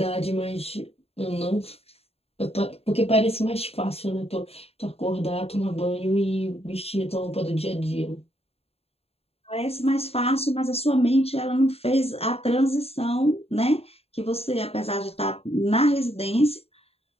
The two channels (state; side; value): late; right; 0.29 ms